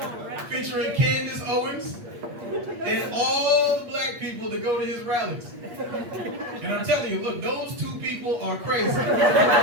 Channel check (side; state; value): left; late; 8.4 ms